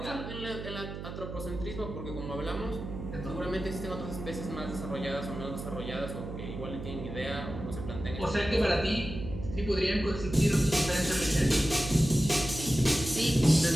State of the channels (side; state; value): right; noise; hum, 8 dB below the sound